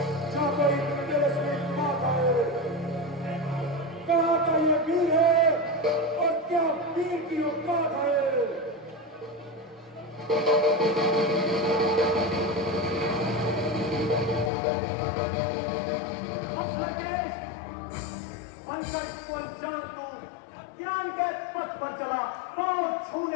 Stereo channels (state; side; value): drops out; right; at 14.5 s